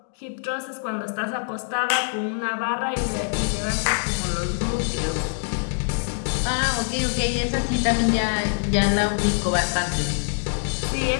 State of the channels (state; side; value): silent; right; digital silence